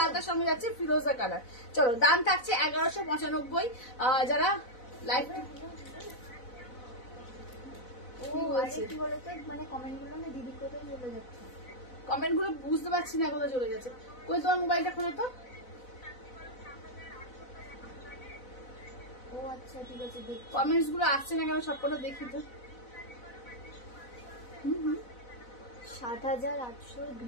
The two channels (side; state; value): right; late; 4.0 ms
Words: আলতার সঙ্গে যাচ্ছে ফিরোজা কালার। চলো দাম থাকছে 1195। যারা লাইভ কি বলতো মানে কমেন্ট গুলো না দিদি কোথায় চলে যাচ্ছে, কমেন্ট গুলো বুঝতে পারছি না কোথায় চলে যাচ্ছে। কই তোমার মোবাইলটা খোলো তো। ও আচ্ছা ঠিক আছে, দেখ কমেন্টস গুলো আসছে না কেন সবকটা দেখি তো। 7800